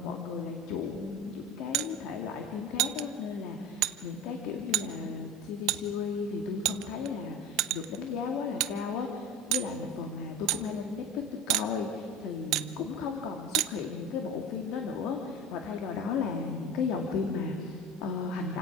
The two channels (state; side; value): normal; both; correlation 0.32